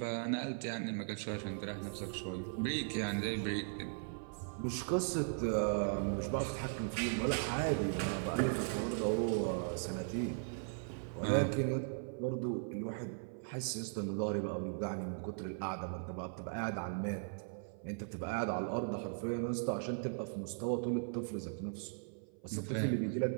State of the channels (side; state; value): left; silent; 52 dB below the other